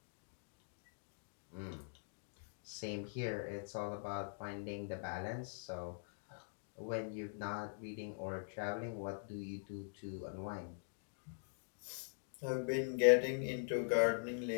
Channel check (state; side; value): silent; right; digital silence